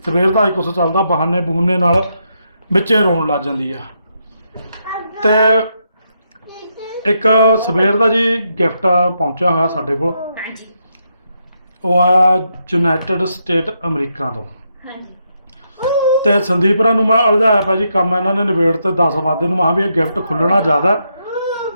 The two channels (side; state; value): both; inverted; correlation -0.80